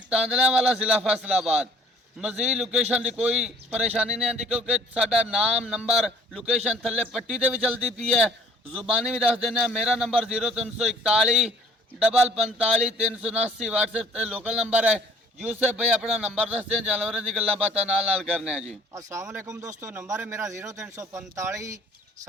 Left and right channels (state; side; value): normal; both; correlation 0.54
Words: तांदलावाला, जिला फैसलाबाद। मजीद लोकेशन की कोई परेशानी नहीं आती क्योंकि साडा नाम नंबर लोकेशन थले पट्टी से भी चलती पी है, जुबानी भी दस देना। मेरा नंबर 0341 45 379 व्हाट्सएप लोकल नंबर है। यूसुफ भाई अपना नंबर दस दें, जानवरों की गल्लां बातां नाल करने हैं जी। अस्सलाम वालेकुम दोस्तों, नंबर है मेरा 0345